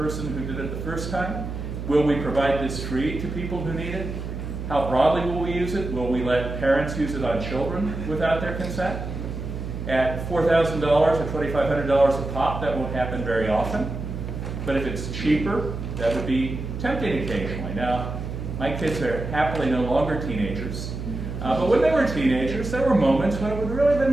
who did it the first time? Will we provide this free to people who need it? How broadly will we use it? Will we let parents use it on children without their consent? At $4,000 or $2,500 a pop, that won't happen very often. But if it's cheaper, that would be tempting occasionally. Now, my kids are happily no longer teenagers. But when they were teenagers, there were moments when it would really have been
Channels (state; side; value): noise; right; hum, 6 dB below the sound